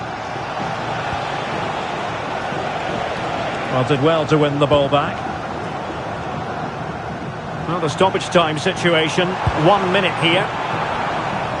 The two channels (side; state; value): both; identical; correlation 1.00